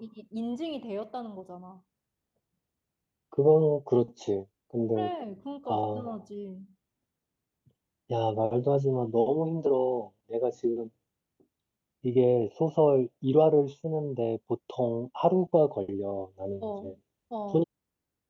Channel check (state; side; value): identical; both; correlation 1.00